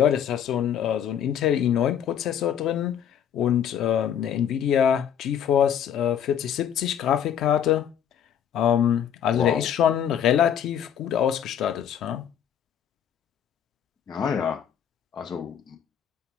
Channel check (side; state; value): right; quieter; 9.1 dB